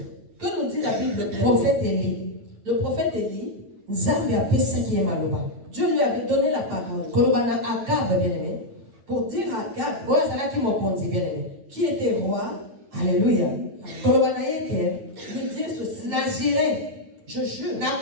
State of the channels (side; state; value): left; late; 8.8 ms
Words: Que nous dit la Bible? Prophète Élie. Le prophète Élie, Dieu lui avait donné la parole pour dire à Akab, qui était roi, Alléluia, lui dire ceci. Je jure